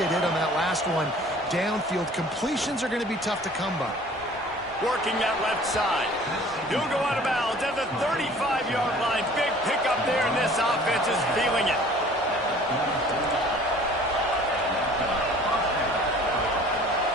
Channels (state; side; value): normal; both; correlation 0.50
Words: did on that last one. Downfield completions are going to be tough to come by. Working that left side. He'll go out of bounds at the 35-yard line. Big pickup there, and this offense is feeling it.